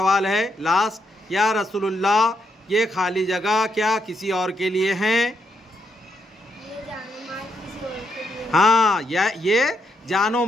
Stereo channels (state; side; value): normal; both; correlation 0.78